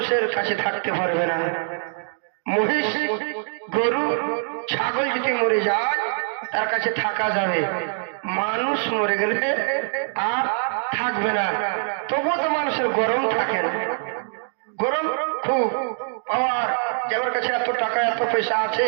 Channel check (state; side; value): silent; left; digital silence